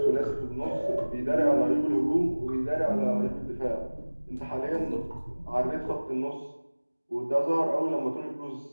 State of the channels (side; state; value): both; inverted; correlation -1.00